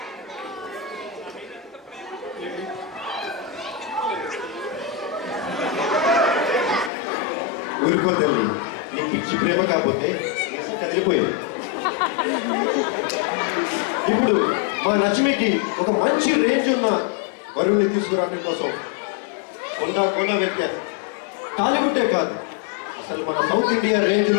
ఊరుకో తల్లి, నీ పిచ్చి ప్రేమ కాకపోతే కదిలిపోయింది. ఇప్పుడు మా లక్ష్మికి ఒక మంచి రేంజ్ ఉన్న వరుణ్ణి తీసుకురావడం కోసం కొండ వ్యత్యాసం టాలీవుడ్డే కాదు, అసలు మన సౌత్ ఇండియా రేంజ్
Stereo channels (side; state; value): right; drops out; at 6.9 s